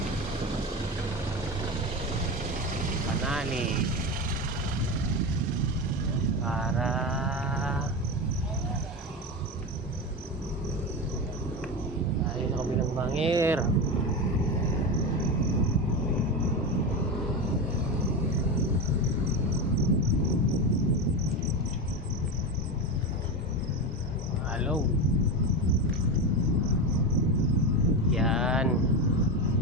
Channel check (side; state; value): both; normal; correlation 0.19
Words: Panali para tayo sa kabilang bangir. Hello. Yan.